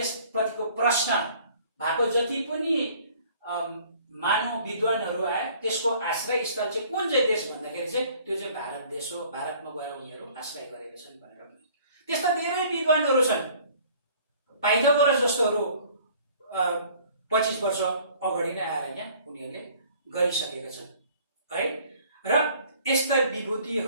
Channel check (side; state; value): both; inverted; correlation -0.54